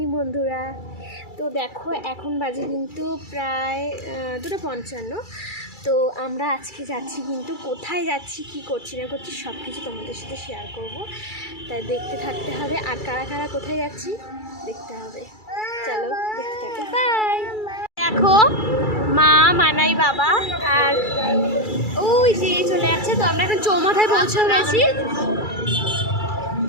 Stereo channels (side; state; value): right; late; 2.3 ms